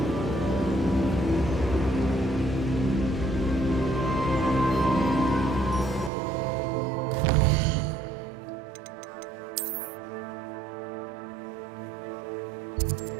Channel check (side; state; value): left; drops out; at 6.1 s